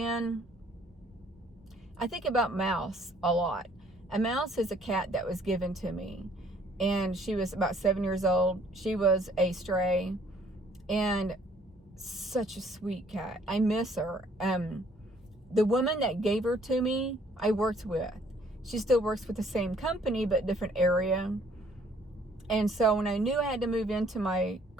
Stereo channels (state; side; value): normal; both; correlation 0.61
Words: I think about Mouse a lot. A Mouse is a cat that was given to me. And she was about 7 years old. She was a stray. And such a sweet cat. I miss her. The woman that gave her to me, I worked with. She still works with the same company, but different area. And so when I knew I had to move into my